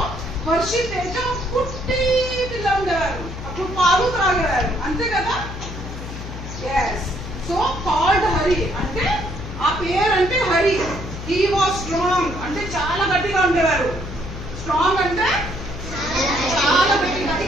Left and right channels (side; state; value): left; noise; hum, 9 dB below the sound